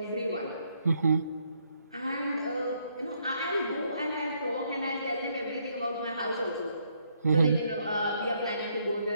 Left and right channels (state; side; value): inverted; both; correlation -0.72